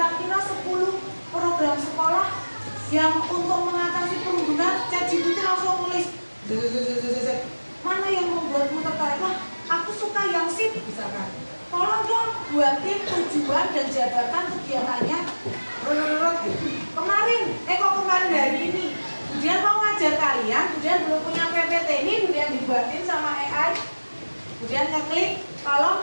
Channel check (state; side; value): inverted; both; correlation -1.00